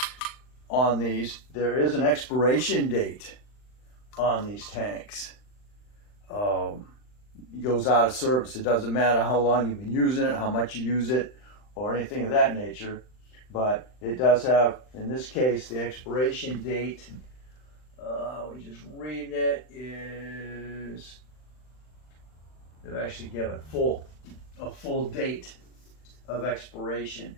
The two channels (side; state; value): right; late; 39 ms